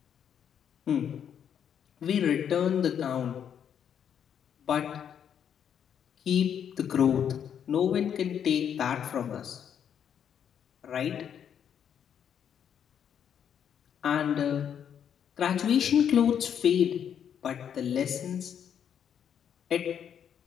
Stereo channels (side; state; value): right; quieter; 8.6 dB